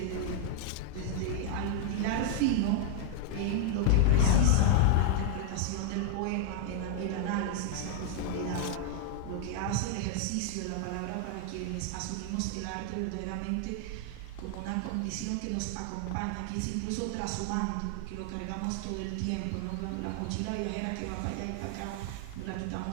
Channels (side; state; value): both; different; correlation 0.00